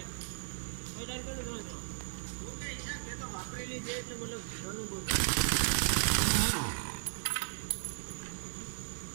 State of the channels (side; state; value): left; silent; digital silence